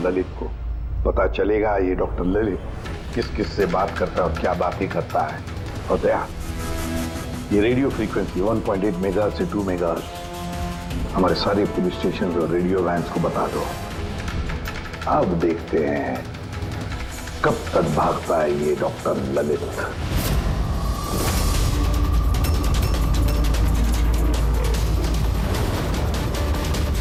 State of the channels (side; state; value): both; identical; correlation 1.00